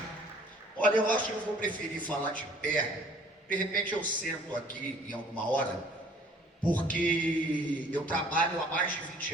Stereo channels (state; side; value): normal; both; correlation 0.54